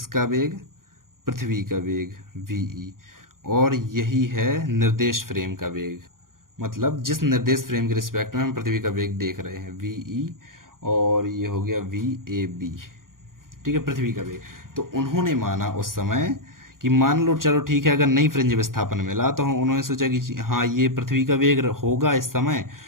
वेग? पृथ्वी का वेग वी, और यही है निर्देश फ्रेम का वेग। मतलब जिस निर्देश फ्रेम के रिस्पेक्ट में हम पृथ्वी का वेग देख रहे हैं वी, और ये हो गया वी ए बी, ठीक है, पृथ्वी का वेग। तो उन्होंने माना उस समय कि मान लो चलो ठीक है, अगर नई फ्रिंज विस्थापन मिला तो उन्होंने सोचा कि हाँ ये पृथ्वी का वेग होगा इस समय,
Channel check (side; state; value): left; late; 0.91 ms